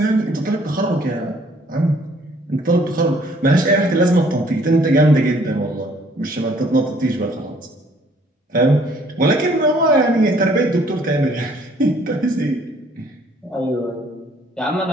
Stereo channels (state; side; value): normal; both; correlation 0.60